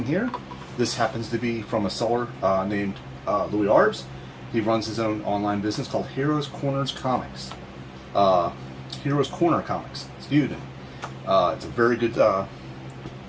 here. This happens to be from a seller named Louie Arbs. He runs his own online business called Heroes Corners Comics. Heroes Corner Comics, excuse me. It's a very good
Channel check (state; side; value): identical; both; correlation 1.00